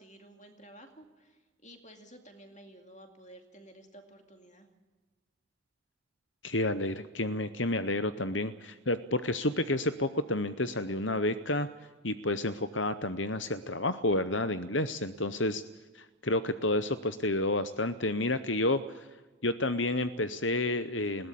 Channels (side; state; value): both; normal; correlation 0.00